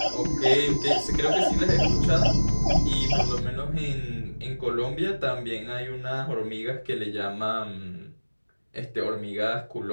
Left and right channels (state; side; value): inverted; both; correlation -1.00